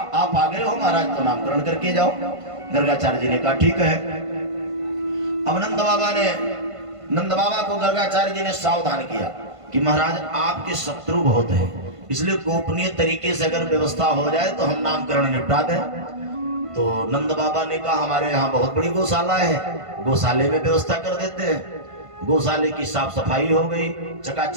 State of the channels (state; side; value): late; left; 1.5 ms